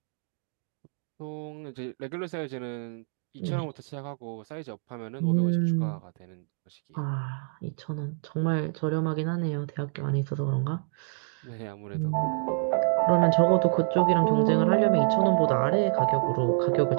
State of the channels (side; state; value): left; silent; 60 dB below the other